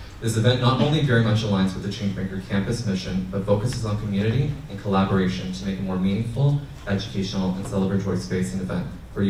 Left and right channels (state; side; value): identical; both; correlation 1.00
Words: This event not only very much aligns with the Changemaker campus mission, but focuses on community and collaboration to make a more meaningful, educational, and celebratory space and event for